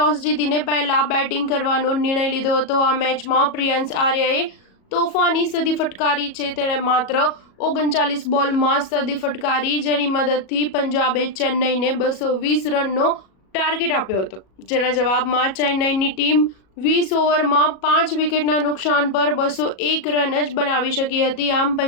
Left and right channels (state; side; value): late; right; 37 ms